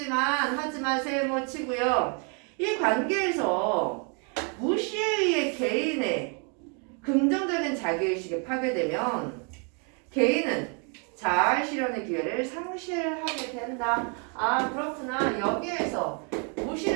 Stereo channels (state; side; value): quieter; left; 37.5 dB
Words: 하지만 세모 치고요. 이 관계에서 무시에 의해 개인의 긍정적인 자기의식이 파괴되면 개인은 자아 실현의 기회를 상실하게 된다. 아 그렇구나. 여기에서